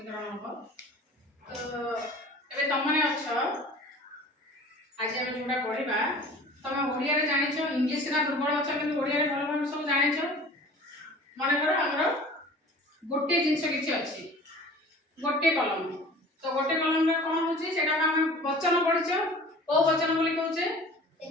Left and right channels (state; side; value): normal; both; correlation 0.44